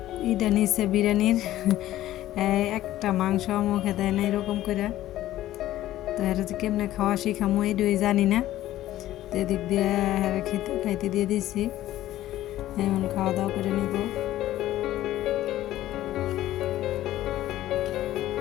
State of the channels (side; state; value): right; quieter; 14.2 dB